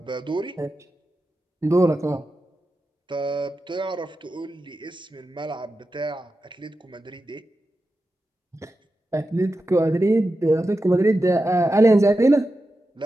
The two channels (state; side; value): normal; both; correlation 0.91